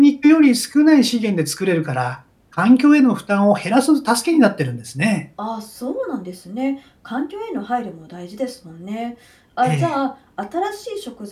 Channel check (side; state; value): both; identical; correlation 1.00